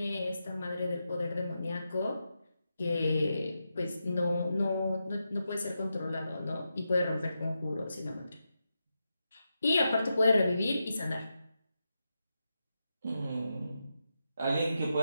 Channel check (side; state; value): both; inverted; correlation -0.87